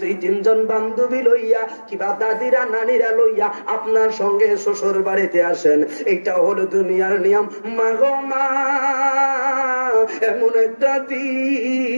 2-3 জন বান্ধবী লইয়া কিবা দাদিরা নানিরা লইয়া আপনার সঙ্গে শ্বশুর বাড়িতে আসেন। এটা হলো দুনিয়ার নিয়ম। মা গো মা, এমন একটা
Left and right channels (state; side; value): inverted; both; correlation -1.00